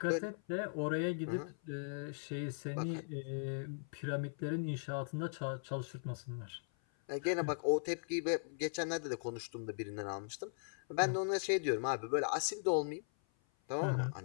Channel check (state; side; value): silent; right; 52 dB below the other